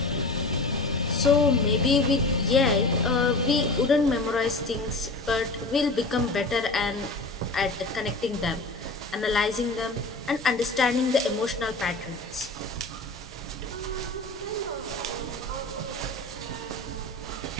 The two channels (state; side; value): quieter; right; 3.0 dB